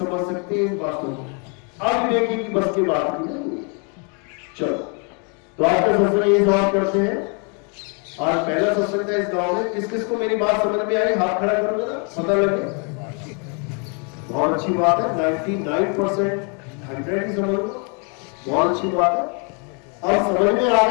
सकते हैं इन बातों को। अविवेकी की बस की बात नहीं। चलो, तो आज का सत्संग ये समाप्त करते हैं। आज पहला सत्संग था इस गांव में। किस किस को मेरी बात समझ में आई? हाथ खड़ा करो जरा, पता लगे। बहुत अच्छी बात है, 99% 100 ही समझ लो, बहुत अच्छी बात है। अब समझ में आ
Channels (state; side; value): quieter; right; 36.5 dB